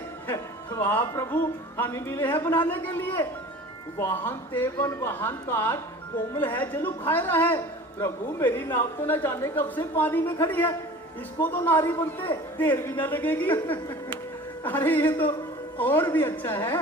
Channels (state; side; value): normal; both; correlation 0.41